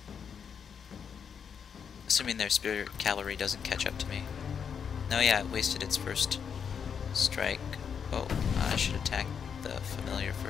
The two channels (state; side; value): quieter; right; 7.0 dB